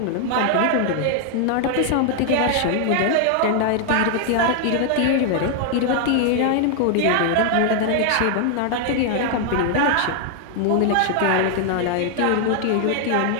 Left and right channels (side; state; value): both; different; correlation 0.00